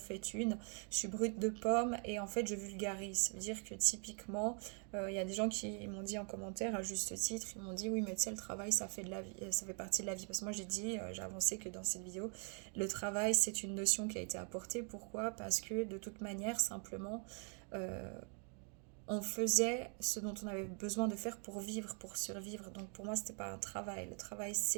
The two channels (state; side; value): quieter; left; 40.0 dB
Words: une, je suis brute de pomme et en fait je vulgarise. Ça veut dire que typiquement il y a des gens qui m'ont dit en commentaire à juste titre, ils m'ont dit oui mais tu sais le travail ça fait de la vie, ça fait partie de la vie. Parce que moi j'ai dit, j'ai avancé que dans cette vidéo, le travail c'est une notion qui a été apportée. Pourquoi? Parce que de toute manière simplement euh, on faisait ce dont on avait besoin de faire pour vivre, pour survivre. Donc pour moi, c'était pas un travail. Le travail,